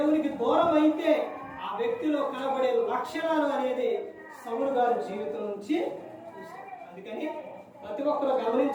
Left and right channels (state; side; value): identical; both; correlation 1.00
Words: దూరం అయితే ఆ వ్యక్తిలో కనబడే లక్షణాలు అనేది సౌలు గారి జీవితం నుంచి చూసాం. అందుకని ప్రతి ఒక్కరు